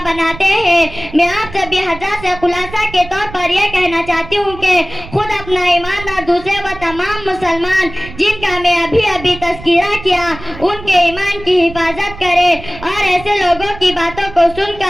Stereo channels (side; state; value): right; noise; rumble, 16 dB below the sound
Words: بناتے ہیں. میں آپ سبھی حضرات سے خلاصہ کے طور پر یہ کہنا چاہتی ہوں کہ خود اپنا ایمان اور دوسرے وہ تمام مسلمان جن کا میں ابھی تذکرہ کیا ان کے ایمان کی حفاظت کرے اور ایسے لوگوں کی باتوں کو سن